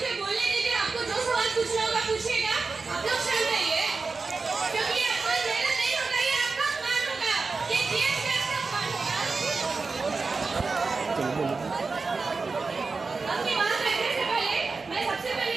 बोलने दीजिए, आपको जो सवाल पूछना होगा पूछिएगा, आप लोग शांत रहिए, क्योंकि ये कोई मेहनत नहीं होगा, ये आपका अपमान होगा, ये जीएस का अपमान होगा। अपनी बात रखने से पहले मैं सबसे पहले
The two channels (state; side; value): quieter; left; 4.2 dB